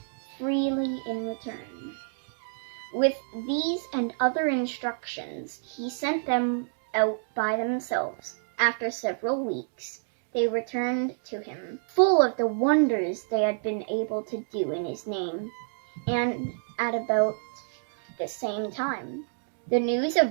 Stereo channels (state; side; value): silent; left; digital silence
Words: freely in return." With these and other instructions, he sent them out by themselves. After several weeks, they returned to him, full of the wonders they had been able to do in his name. And at about the same time, the news